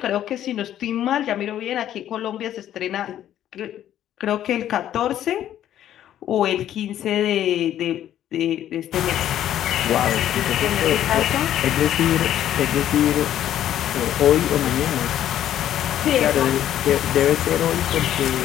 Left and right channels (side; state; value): right; quieter; 11.5 dB